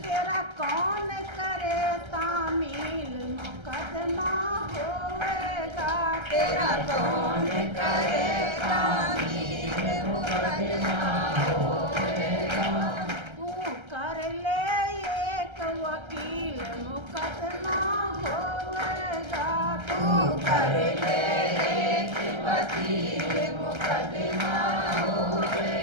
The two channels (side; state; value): left; late; 1.3 ms